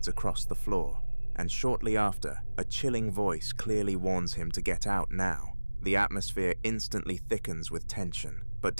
across the floor, and shortly after, a chilling voice clearly warns him to get out now. The atmosphere instantly thickens with tension, but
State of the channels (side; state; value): both; inverted; correlation -1.00